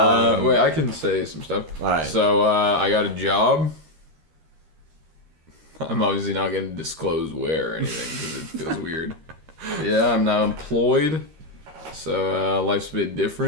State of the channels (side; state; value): left; late; 13 ms